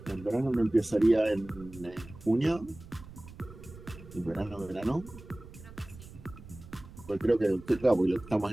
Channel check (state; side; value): noise; right; rumble, 17 dB below the sound